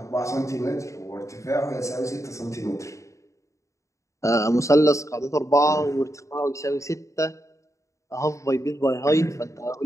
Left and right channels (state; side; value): late; right; 0.15 ms